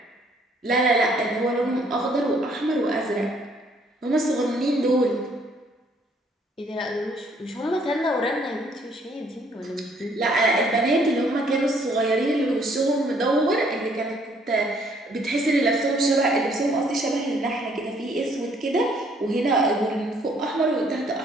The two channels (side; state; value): both; normal; correlation 0.64